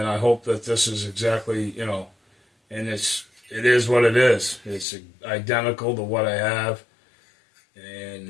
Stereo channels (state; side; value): drops out; right; at 4.9 s